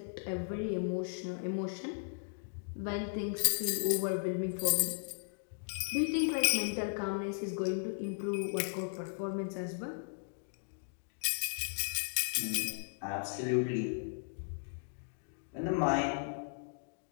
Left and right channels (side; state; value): right; silent; digital silence